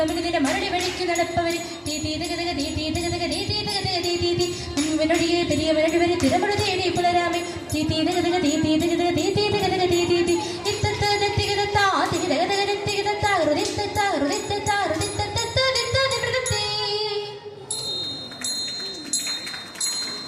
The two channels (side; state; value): both; identical; correlation 1.00